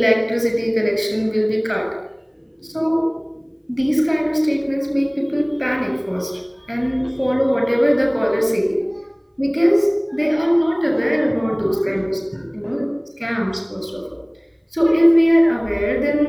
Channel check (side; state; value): both; identical; correlation 1.00